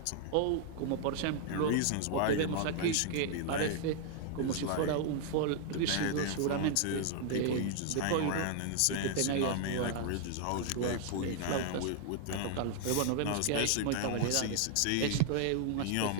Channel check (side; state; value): both; different; correlation 0.00